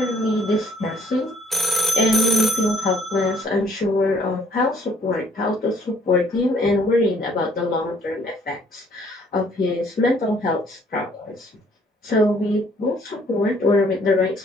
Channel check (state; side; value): normal; both; correlation 0.63